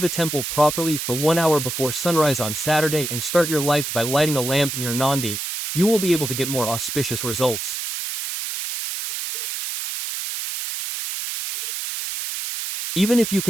temple properly for 1 hour before sunrise on Saturday and start your life by lighting a lamp near Nandi, you will be able to get more auspicious results. Even if you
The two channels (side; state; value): right; noise; hiss, 4 dB below the sound